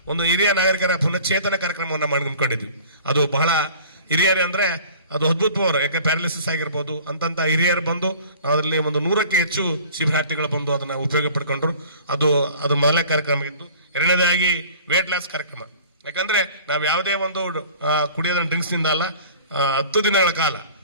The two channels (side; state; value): both; inverted; correlation -0.46